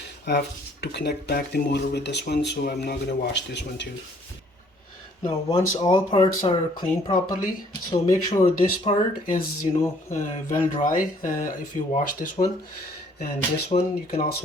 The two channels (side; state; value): both; normal; correlation 0.61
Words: I have to connect back the motor with this one, so I'm not going to wash this one too. Now once all parts are cleaned properly, so make sure this part is well dry if you wash this one, and this one you can